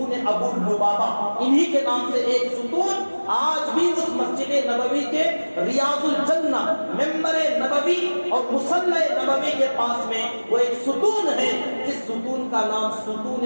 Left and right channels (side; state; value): both; inverted; correlation -1.00